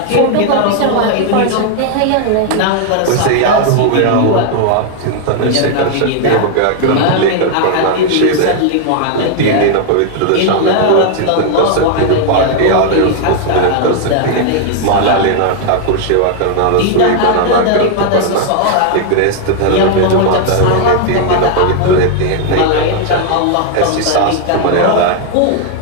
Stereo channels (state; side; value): different; both; correlation 0.00